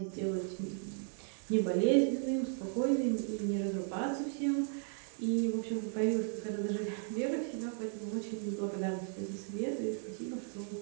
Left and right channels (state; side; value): silent; left; 54 dB below the other